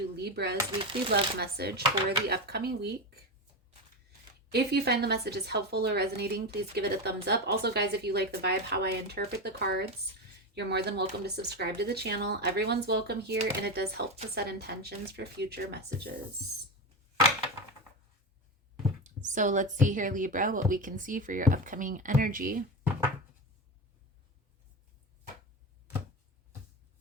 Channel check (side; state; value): both; normal; correlation 0.18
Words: Libra's weekly love message for the upcoming week. If you find the message is helpful or resonating, please give it a thumbs up. Also, guys, if you like the vibe, how I interpret the cards, you're more than welcome to subscribe to the channel. Everyone's welcome here, and it does help to set intentions for future messages. So let's see here, Libra, what we can see for your upcoming energy.